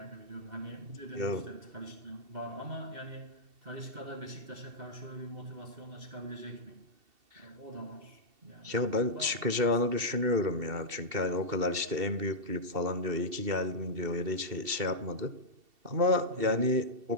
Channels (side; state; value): left; late; 2.7 ms